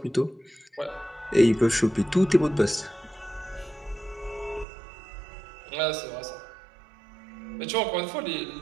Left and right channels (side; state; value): left; drops out; at 4.7 s